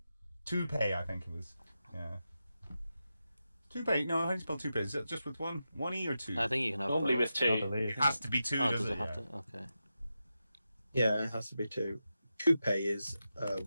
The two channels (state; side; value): inverted; both; correlation -0.90